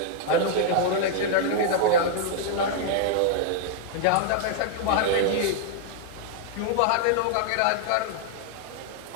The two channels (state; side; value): different; both; correlation 0.00